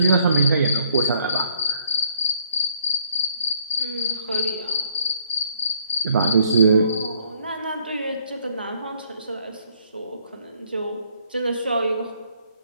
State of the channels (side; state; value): both; inverted; correlation -0.66